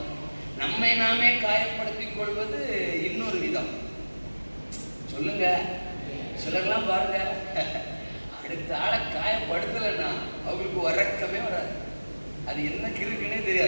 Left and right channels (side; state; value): both; inverted; correlation -1.00